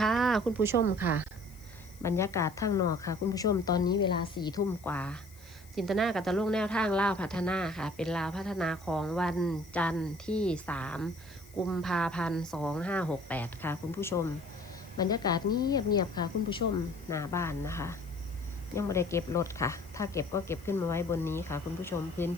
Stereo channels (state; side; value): noise; left; hiss, 24 dB below the sound